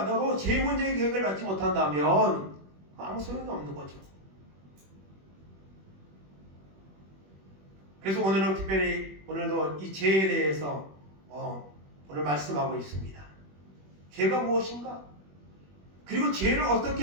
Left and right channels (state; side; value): late; left; 21 ms